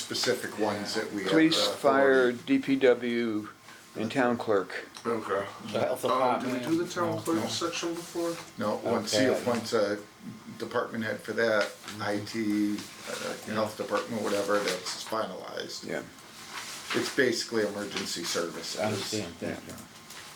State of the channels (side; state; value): both; identical; correlation 1.00